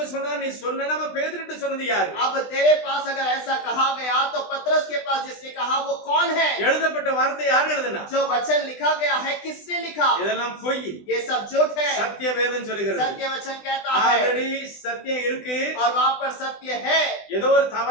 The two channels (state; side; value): late; right; 20 ms